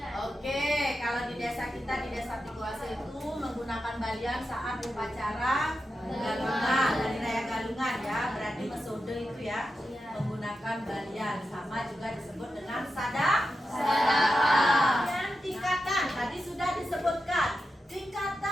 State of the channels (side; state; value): both; normal; correlation 0.89